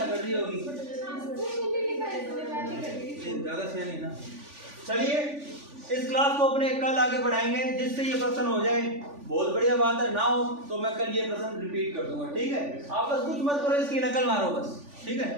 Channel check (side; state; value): left; late; 3.5 ms